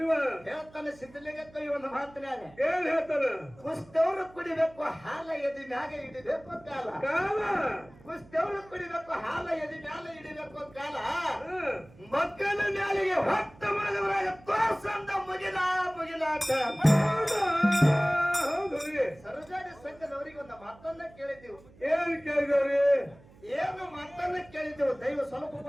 ಹೇಳ್ತಾನೆ ಸಿದ್ಧಲಿಂಗಕ್ಕ ಇವನು ಮಾತನಾಗ ಏನ್ ಹೇಳ್ತಾನ? ಕುಸ್ತವ್ರು ಕುಡಿಬೇಕು ಹಾಲ ಎದಿ ಮ್ಯಾಗ ಹಿಡಿಬೇಕು ಕಾಲ. ಕುಸ್ತವ್ರು ಕುಡಿಬೇಕು ಹಾಲ ಎದಿ ಮ್ಯಾಲ ಹಿಡಿಬೇಕು ಕಾಲ. ಮಕ್ಕಳ ಮ್ಯಾಲಿಗೆ ಹೊತ್ತ ಮಗದ್ರಾಗ ತೋರ್ಸಂದ ಮುಗಿಲ ಮುಗಿಲಾಟ. ಹೌದು ಸರಜಾಡಿ ಸಂಘದವರಿಗೆ ಒಂದು ಮಾತನ್ನ ಕೇಳಿದ್ದೀವಿ. ಏನ್ ಕೇಳಿದವ್ರಿ? ಏನು ಮಾತನ್ನ ಕೇಳಿದ್ದೆವು. ದೈವ ಸ್ವಲ್ಪ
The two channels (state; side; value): noise; right; hum, 24 dB below the sound